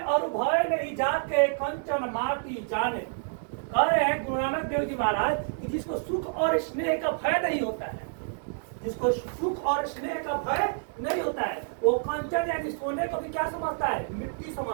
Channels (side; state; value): left; silent; digital silence